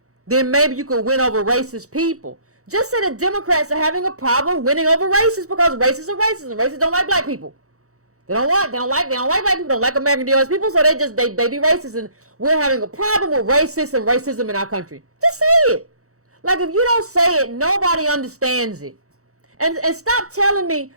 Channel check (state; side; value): late; left; 0.65 ms